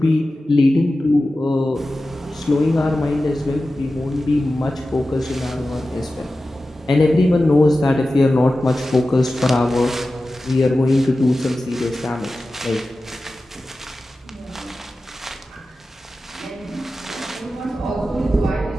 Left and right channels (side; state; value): both; normal; correlation 0.94